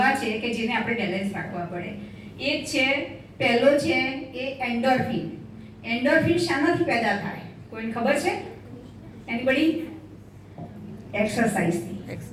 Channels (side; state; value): both; identical; correlation 1.00